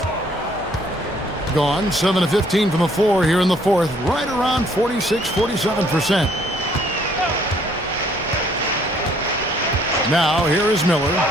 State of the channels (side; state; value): both; normal; correlation 0.63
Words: Gone 7 of 15 from the floor here in the fourth, right around 46-47%. Now here is Miller.